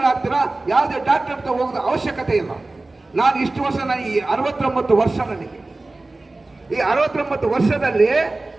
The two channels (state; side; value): quieter; left; 3.1 dB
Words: ಯಾವುದೇ ಡಾಕ್ಟರ್ ಹತ್ರ ಹೋಗೋದು ಅವಶ್ಯಕತೆ ಇಲ್ಲ. ನಾನು ಇಷ್ಟು ವರ್ಷ, ನಾನು ಈ 69 ವರ್ಷ, ನನಗೆ ಈ 69 ವರ್ಷದಲ್ಲಿ